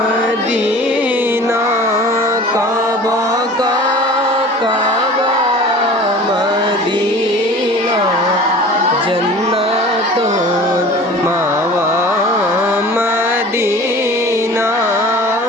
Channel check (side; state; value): both; normal; correlation 0.42